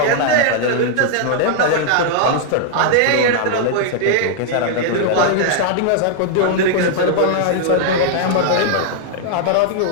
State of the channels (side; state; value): both; different; correlation -0.01